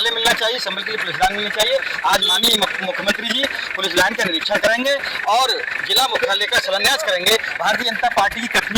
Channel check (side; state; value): both; identical; correlation 1.00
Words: मिलना चाहिए, संभल के लिए पुलिस लाइन मिलनी चाहिए, आज माननीय मुख्यमंत्री जी पुलिस लाइन का निरीक्षण करेंगे और जिला मुख्यालय का शिलान्यास करेंगे। भारतीय जनता पार्टी की